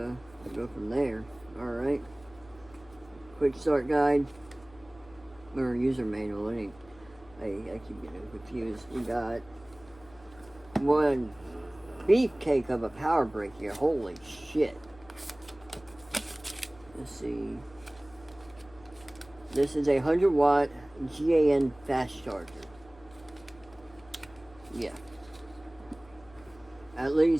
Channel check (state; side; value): noise; left; hum, 24 dB below the sound